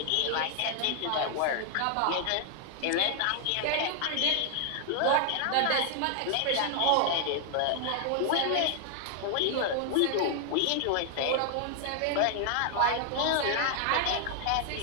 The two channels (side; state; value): both; different; correlation 0.00